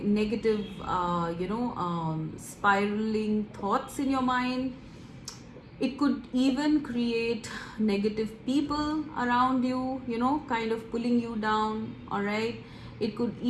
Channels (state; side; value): identical; both; correlation 1.00